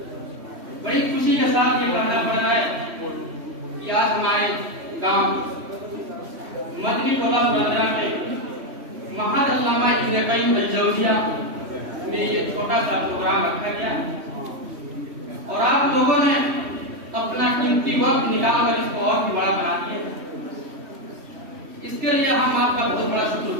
बड़ी खुशी के साथ ये कहना पड़ रहा है कि आज हमारे गांव मदनी टोला पुरंदरा में महाअल्लामा इब्न क़य्यिम अल-जौज़िया में ये छोटा सा प्रोग्राम रखा गया है और आप लोगों ने अपना कीमती वक्त निकाल कर इसको और भी बड़ा बना दिया। इसके लिए हम आपका बहुत बड़ा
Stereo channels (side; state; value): left; late; 3.1 ms